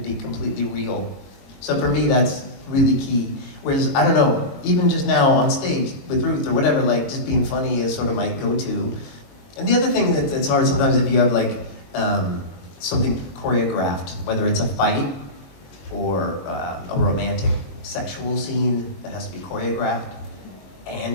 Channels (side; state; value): right; late; 21 ms